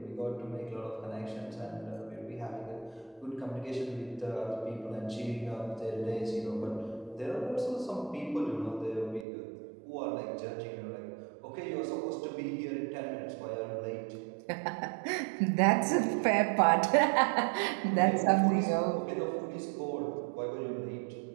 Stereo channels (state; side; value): drops out; left; at 9.2 s